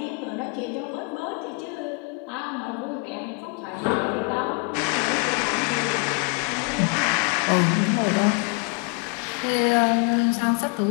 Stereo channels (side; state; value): right; quieter; 31.5 dB